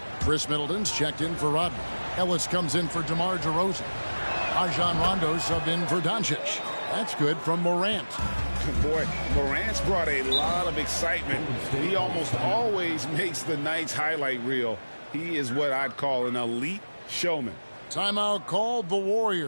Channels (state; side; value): inverted; both; correlation -1.00